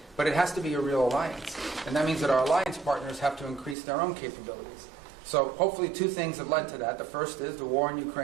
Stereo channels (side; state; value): left; drops out; at 3.8 s